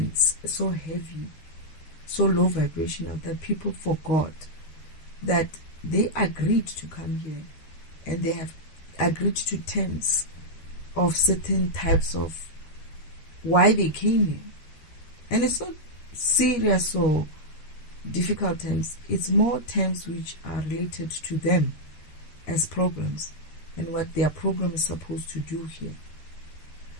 so heavy, so low vibrational that people forgot that they agreed to come here and they have agreed to terms of certain types of why they came here. And it's not serious or difficult terms. It's more terms which are related to them as programs and what their program is supposed to do here.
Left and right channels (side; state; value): right; late; 13 ms